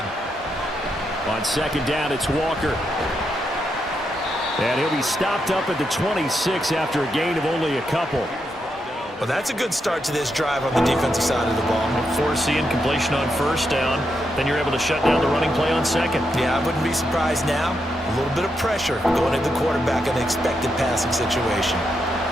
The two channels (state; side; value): normal; both; correlation 0.83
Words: On second down, it's Walker. And he'll be stopped up at the 26 after a gain of only a couple. Well, that's a good start to this drive on the defensive side of the ball. Force the incompletion on first down. Then you're able to shut down the running play on second. Yeah, I wouldn't be surprised now. A little bit of pressure going at the quarterback in an expected passing situation.